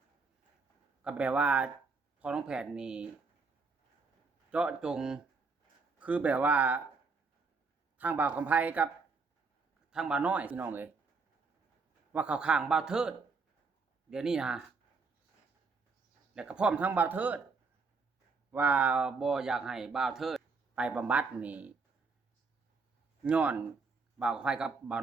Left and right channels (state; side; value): quieter; left; 4.4 dB